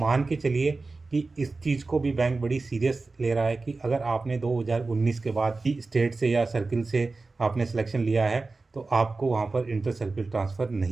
के चलिए कि इस चीज़ को भी बैंक बड़ी सीरियस ले रहा है कि अगर आपने 2019 के बाद ही स्टेट से या सर्किल से आपने सिलेक्शन लिया है तो आपको वहाँ पर इंटर सर्किल ट्रांसफ़र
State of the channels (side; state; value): left; quieter; 3.7 dB